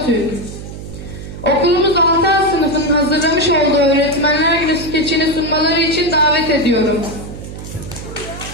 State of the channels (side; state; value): right; noise; hum, 11 dB below the sound